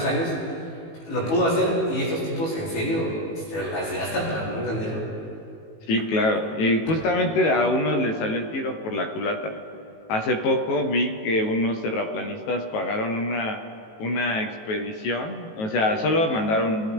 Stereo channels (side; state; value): right; late; 18 ms